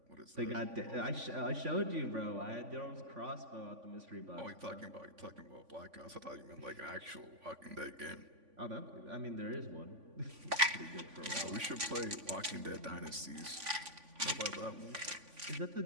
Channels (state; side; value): late; left; 3.5 ms